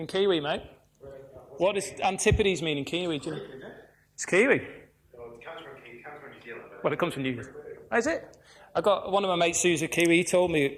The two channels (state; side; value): identical; both; correlation 1.00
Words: Kiwi, mate? What does antipodes mean in Kiwi? Do you know? It's Kiwi. Well, it comes from New Zealand. Well, it comes from New Zealand. Oh, is it? I got one of my mates who's a Kiwi. He told me,